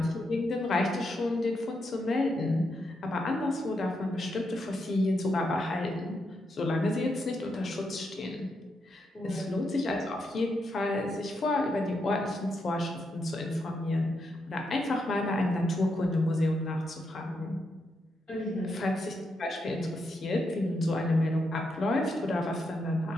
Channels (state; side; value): normal; both; correlation 0.82